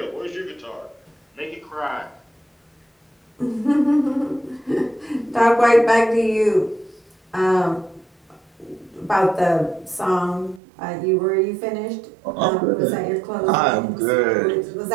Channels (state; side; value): drops out; left; at 10.6 s